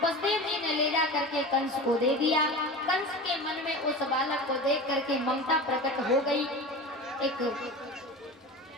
जी ने ले जा करके कंस को दे दिया। कंस के मन में उस बालक को देख करके ममता प्रकट हो गई, एक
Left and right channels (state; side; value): normal; both; correlation 0.31